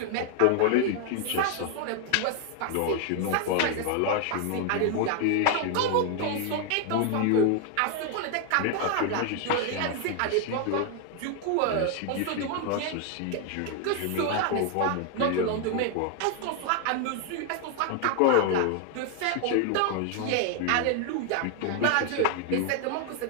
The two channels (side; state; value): both; different; correlation 0.00